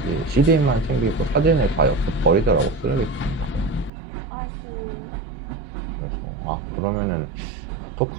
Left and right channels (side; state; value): left; drops out; at 3.9 s